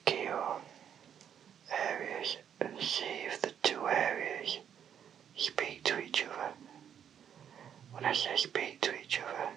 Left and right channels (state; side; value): quieter; left; 8.8 dB